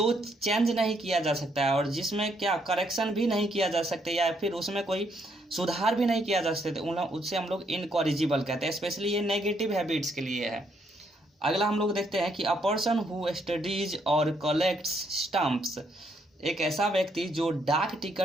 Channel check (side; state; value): both; normal; correlation 0.73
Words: चेंज नहीं किया जा सकता है और जिसमें क्या करेक्शन भी नहीं किया जा सकता या फिर उसमें कोई सुधार भी नहीं किया जा सकता, उससे हम लोग इनकॉरिजिबल कहते हैं। स्पेशली ये नेगेटिव हैबिट्स के लिए है। अगला हम लोग देखते हैं कि अ पर्सन हु स्टडीज और कलेक्ट्स स्टम्प्स, एक ऐसा व्यक्ति जो डाक